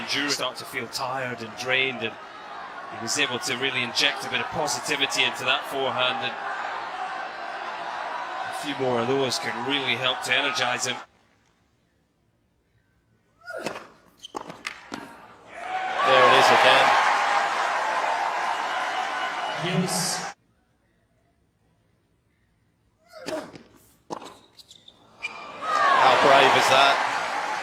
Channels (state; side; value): identical; both; correlation 1.00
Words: Start to feel tired and drained, and he was able to really inject a bit of positivity into that forehand, and a few more of those can really help to energize him. There it is again. Use. How brave is that?